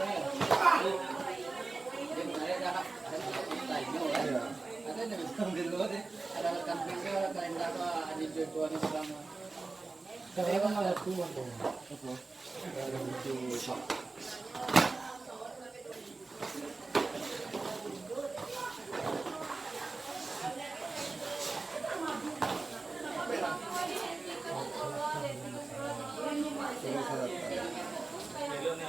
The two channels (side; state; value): left; quieter; 3.6 dB